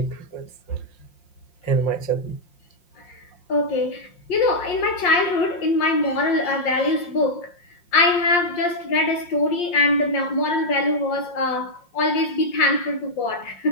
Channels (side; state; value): right; late; 5.6 ms